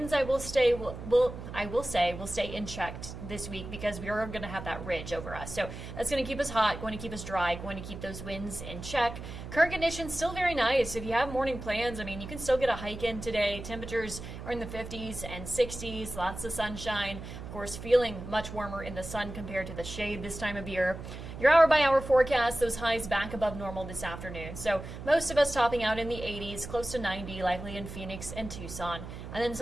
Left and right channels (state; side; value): noise; right; hum, 10 dB below the sound